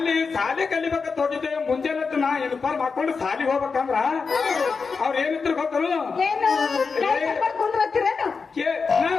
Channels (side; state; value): right; quieter; 5.0 dB